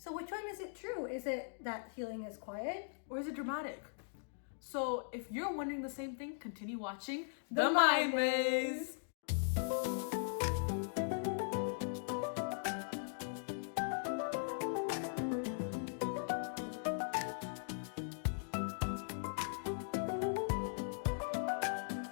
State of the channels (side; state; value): right; silent; digital silence